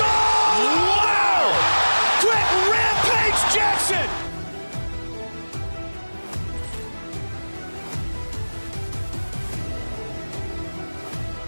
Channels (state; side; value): inverted; both; correlation -1.00